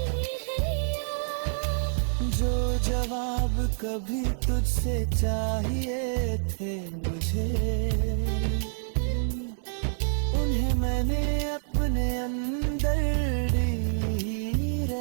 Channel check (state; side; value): silent; left; 60 dB below the other